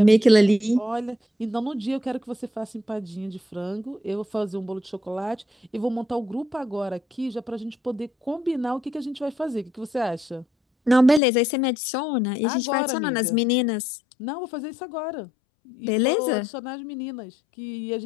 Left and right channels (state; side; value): drops out; right; at 11.2 s